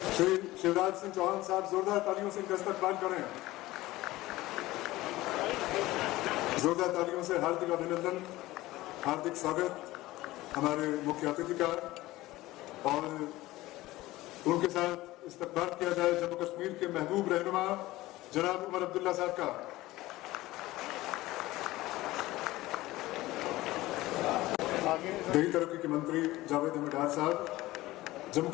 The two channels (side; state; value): right; quieter; 17.9 dB